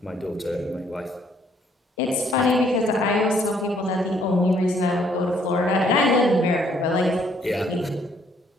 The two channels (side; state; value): both; normal; correlation 0.66